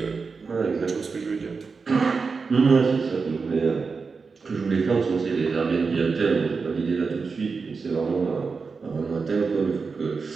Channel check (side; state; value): left; quieter; 4.8 dB